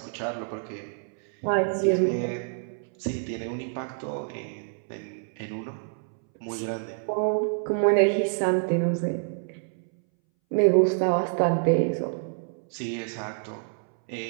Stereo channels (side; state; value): left; silent; 60 dB below the other